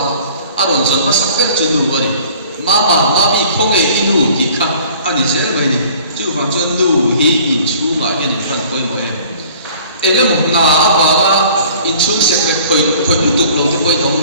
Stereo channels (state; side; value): inverted; both; correlation -0.50